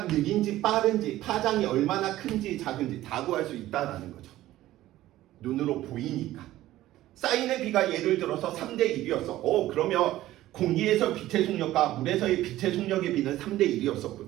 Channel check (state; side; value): quieter; left; 15.1 dB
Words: 느린지 빠른지, 파장이 얼마나 큰지 작은지 다 구할 수 있다는 거죠. 눈으로 보이니까. 사인의 비가 예를 들어서 3대 1이었어. 그러면 공기에서 빛의 속력과 물에서의 빛의 속력의 비는 3대